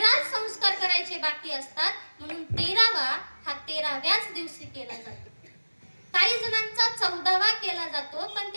संस्कार करायचे बाकी असतात. म्हणून 13वा हा 13व्याच दिवशी केला जातो. काही जणांचा 14वा केला जातो, पण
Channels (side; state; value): both; inverted; correlation -1.00